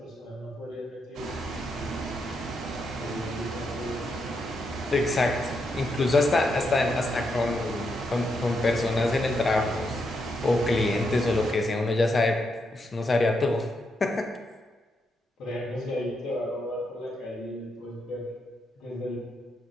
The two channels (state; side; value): normal; both; correlation 0.81